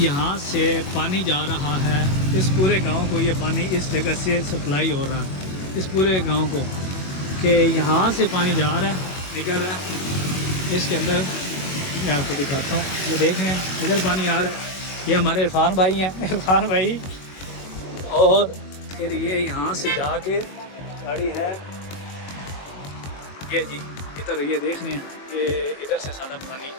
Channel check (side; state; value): right; late; 21 ms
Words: यहाँ से पानी जा रहा है इस पूरे गांव को। ये पानी इस जगह से सप्लाई हो रहा है इस पूरे गांव को, कि यहाँ से पानी जा रहा है, निकल रहा है इसके अंदर। मैं आपको दिखाता हूँ, ये देखें इधर पानी आ रहा है। ये हमारे इरफान भाई हैं, इरफान भाई। और फिर ये यहाँ से जाके गाड़ी है ये जी इधर, ये देख रहे हैं कि इधर से सारा पानी